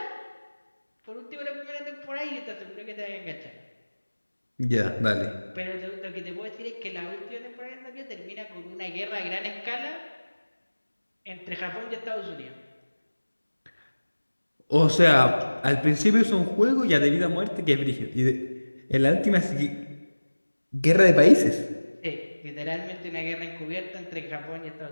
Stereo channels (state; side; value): inverted; both; correlation -1.00